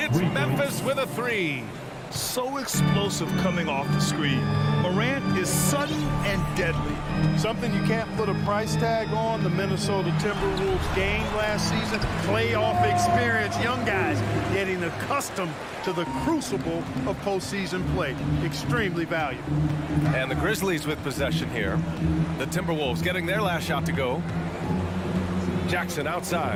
Memphis with a 3. So explosive coming off the screen. Morant is sudden and deadly. Something you can't put a price tag on. The Minnesota Timberwolves gained last season. Playoff experience. Young guys getting accustomed to the crucible of postseason play. Extremely valuable. And the Grizzlies with possession here. The Timberwolves getting their last shot to go. Jackson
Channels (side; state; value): both; identical; correlation 1.00